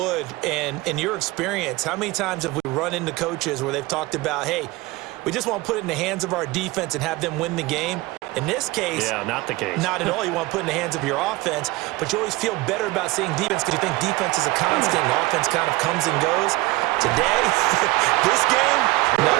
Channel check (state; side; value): quieter; left; 20.6 dB